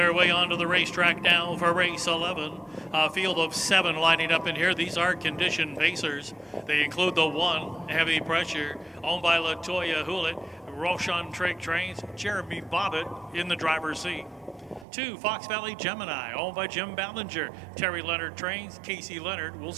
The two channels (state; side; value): drops out; left; at 14.9 s